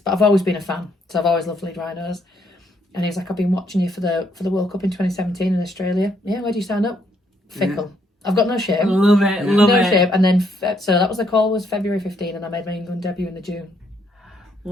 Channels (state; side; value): normal; both; correlation 0.71